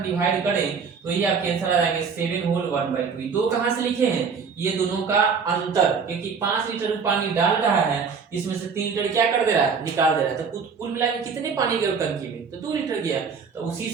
डिवाइड करें तो ये आपके आंसर आ जाएंगे 7 होल 1/2। दो कहां से लिखे हैं, ये दोनों का अंतर, क्योंकि 5 लीटर पानी डाल रहा है, इसमें से 3 लीटर क्या कर दे रहा है, निकाल दे रहा है, तो कुल मिला के कितने पानी गए टंकी में, तो 2 लीटर गया। तो उसी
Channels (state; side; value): quieter; left; 5.8 dB